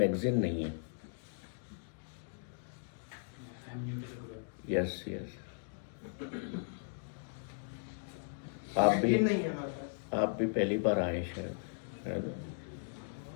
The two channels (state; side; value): silent; right; digital silence